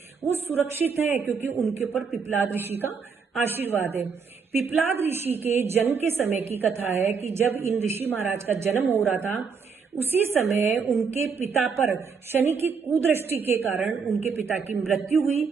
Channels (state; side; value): quieter; left; 5.7 dB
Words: वो सुरक्षित है क्योंकि उनके ऊपर पिपलाद ऋषि का आशीर्वाद है। पिपलाद ऋषि के जन्म के समय की कथा है कि जब इन ऋषि महाराज का जन्म हो रहा था, उसी समय उनके पिता पर शनि की कुदृष्टि के कारण उनके पिता की मृत्यु हुई